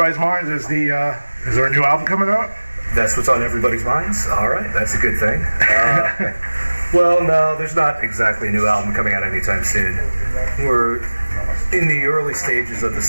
minds is is there a new album coming out? That's what's on everybody's minds? Alright, that's a good thing. Well, no, there's not exactly a new album coming out anytime soon. We're in the early stages of the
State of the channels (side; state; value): both; inverted; correlation -1.00